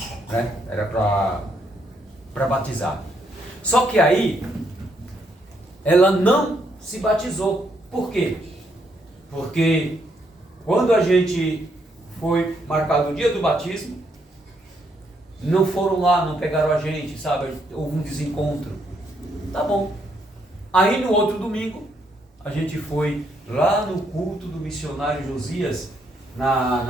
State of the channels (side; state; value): both; normal; correlation 0.74